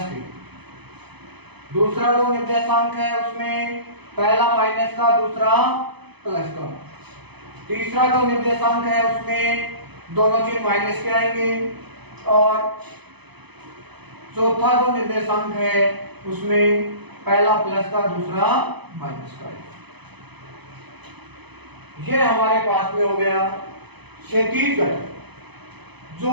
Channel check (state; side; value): late; left; 0.98 ms